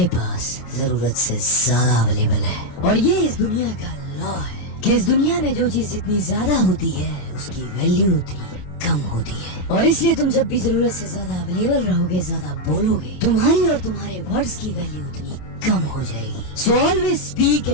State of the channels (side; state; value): right; late; 27 ms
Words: पास जरूरत से ज्यादा अवेलेबल है। और ये इस दुनिया का लॉ है कि इस दुनिया में जो चीज जितनी ज्यादा होती है उसकी वैल्यू उतनी कम होती है, और इसलिए तुम जब भी जरूरत से ज्यादा अवेलेबल रहोगे, ज्यादा बोलोगे, तुम्हारी और तुम्हारे वर्ड्स की वैल्यू उतनी कम हो जाएगी। So always speak